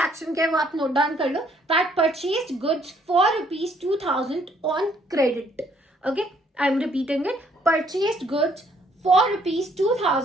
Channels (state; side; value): normal; both; correlation 0.66